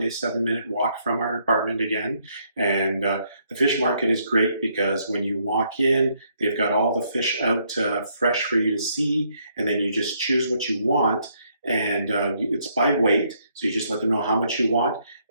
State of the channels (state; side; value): inverted; both; correlation -0.71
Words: 7 minute walk from our apartment again. And the fish market is great because when you walk in, they've got all the fish out fresh for you to see, and then you just choose what you want. And it's by weight, so you just let them know how much you want.